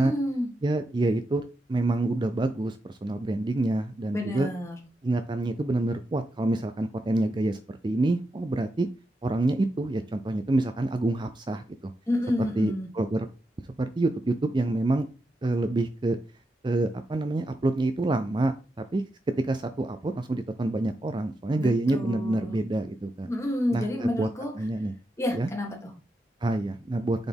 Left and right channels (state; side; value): normal; both; correlation 0.86